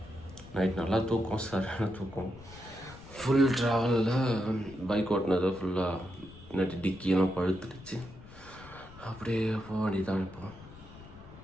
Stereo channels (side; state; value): left; noise; rumble, 18 dB below the sound